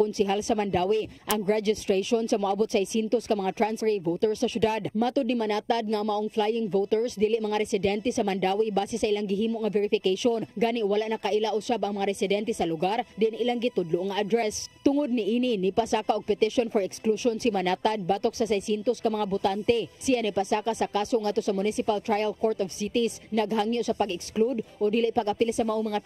sa Mandaue ang registration sa moabot sa 600 ka mga transferee voters sa syudad. Matud ni Manatad nga maong flying voters dili mga residente sa Mandaue base sa ilang gihimo nga verification. Gani wala na kaila usab ang mga residente sa lugar din ilang gitudlo nga address. Tungod ni ini nipasaka og petition for exclusion si Manatad batok sa 600 ka mga botante. Siya nipasaka sa kaso ngadto sa Municipal Trial Court of Cities naghangyo sa pag-exclude o dili pag-apil sa maong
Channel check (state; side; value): identical; both; correlation 1.00